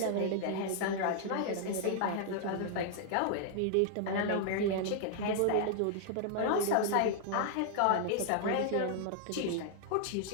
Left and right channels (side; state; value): both; different; correlation -0.01